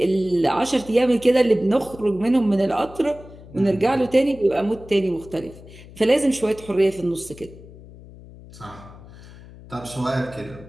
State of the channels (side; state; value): left; noise; hum, 19 dB below the sound